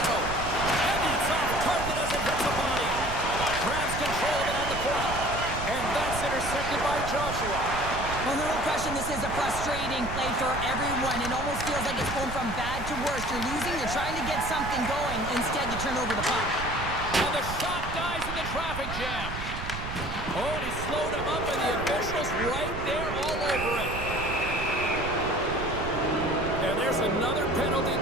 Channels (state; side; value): noise; right; rumble, 7 dB below the sound